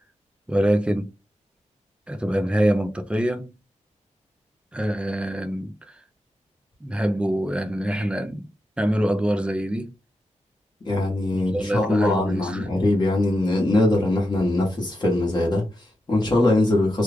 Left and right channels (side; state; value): both; normal; correlation 0.89